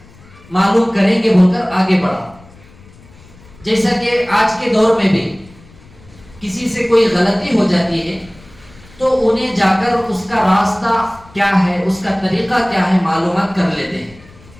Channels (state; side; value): noise; left; rumble, 24 dB below the sound